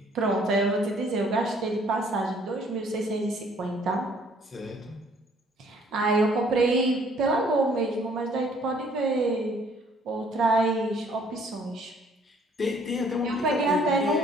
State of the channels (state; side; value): normal; both; correlation 0.60